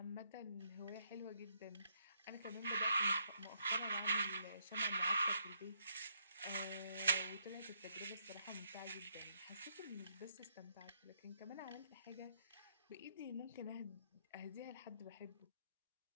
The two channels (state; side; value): inverted; both; correlation -0.74